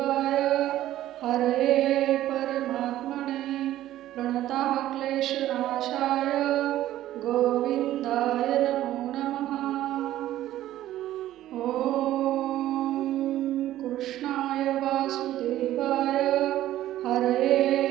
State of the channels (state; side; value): quieter; left; 13.7 dB